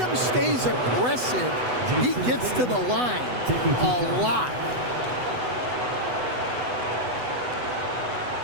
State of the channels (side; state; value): left; late; 8.0 ms